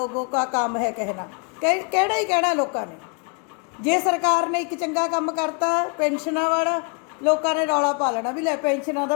का काम है कहना। कहना ही कहना लोगों ने। जे सरकार ने एक चंगा काम करता पेंशना वाला, लोगों ने रौला पा लेना भी लै पेंशनां दा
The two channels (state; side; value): quieter; right; 37.9 dB